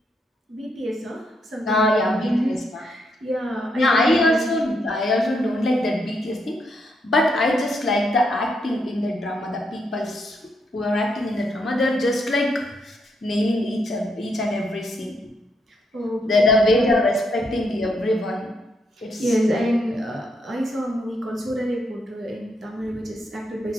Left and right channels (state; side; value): normal; both; correlation 0.77